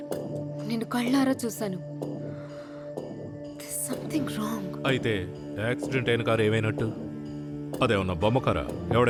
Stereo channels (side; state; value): both; identical; correlation 1.00